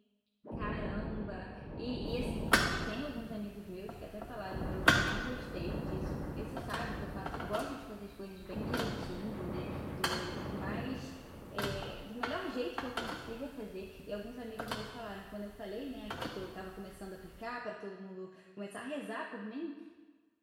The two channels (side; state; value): both; identical; correlation 1.00